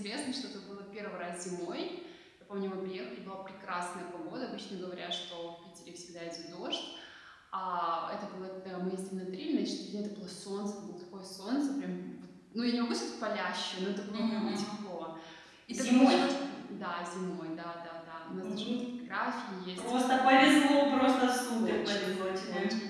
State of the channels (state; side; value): identical; both; correlation 1.00